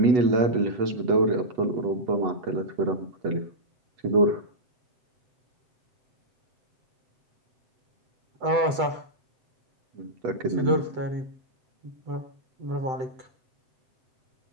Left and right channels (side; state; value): left; late; 7.9 ms